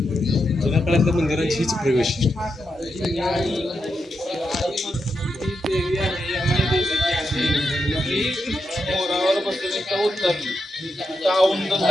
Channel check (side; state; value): both; normal; correlation 0.85